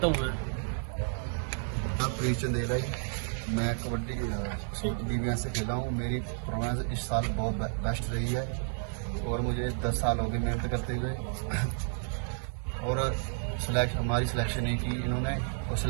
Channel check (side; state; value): left; silent; 57 dB below the other